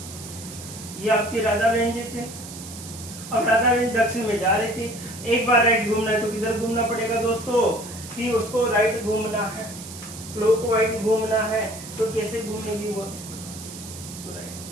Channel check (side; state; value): right; noise; hiss, 13 dB below the sound